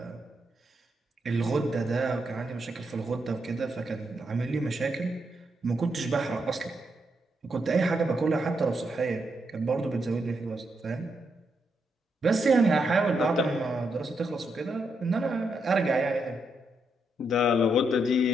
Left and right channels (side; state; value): both; normal; correlation 0.81